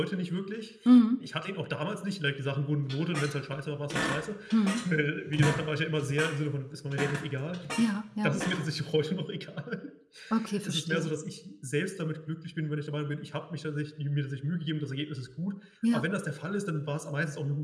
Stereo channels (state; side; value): identical; both; correlation 1.00